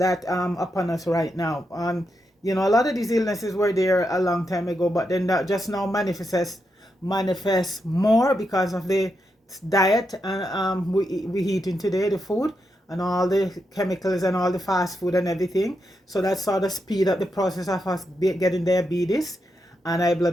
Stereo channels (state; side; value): normal; both; correlation 0.84